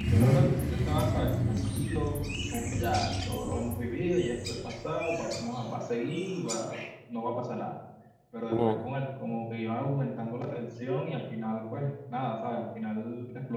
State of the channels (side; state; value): both; identical; correlation 1.00